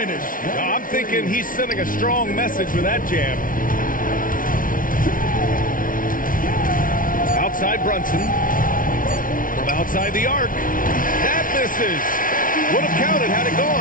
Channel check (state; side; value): late; right; 0.39 ms